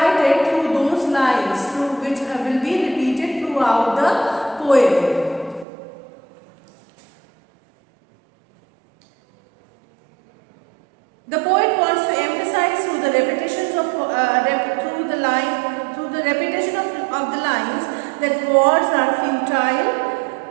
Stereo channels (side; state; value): left; drops out; at 5.7 s